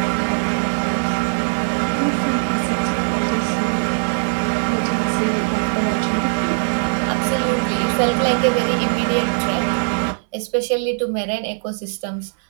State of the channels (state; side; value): silent; left; 66 dB below the other